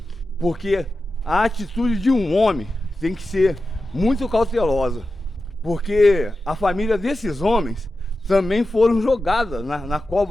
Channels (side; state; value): both; normal; correlation 0.92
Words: Porque a atitude de um homem tem que ser muito cautelosa. Porque a família desses homens também foram jogadas na